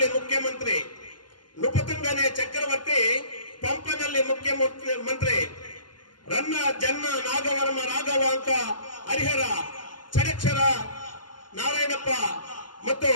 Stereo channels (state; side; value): late; right; 0.71 ms